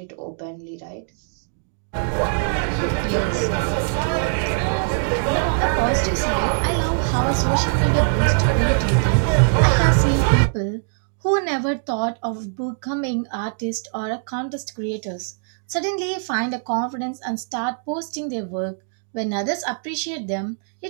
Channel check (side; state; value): left; silent; digital silence